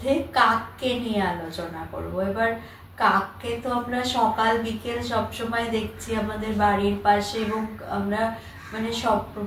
কাককে নিয়ে আলোচনা করব। এবার কাককে তো আমরা সকাল বিকেল সবসময় দেখছি আমাদের বাড়ির পাশে, এবং আমরা মানে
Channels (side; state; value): both; identical; correlation 1.00